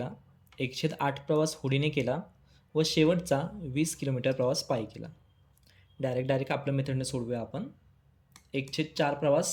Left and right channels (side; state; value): both; identical; correlation 1.00